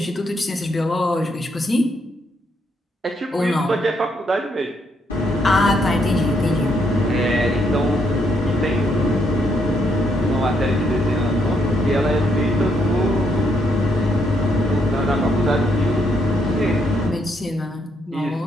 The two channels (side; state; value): both; normal; correlation 0.74